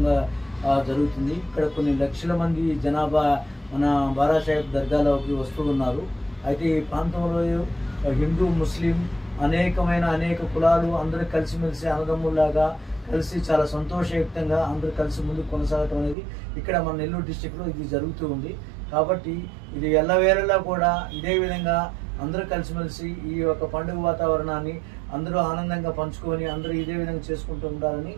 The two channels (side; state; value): left; drops out; at 16.2 s